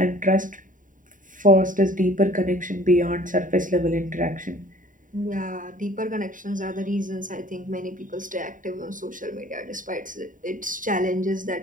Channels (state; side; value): late; left; 0.38 ms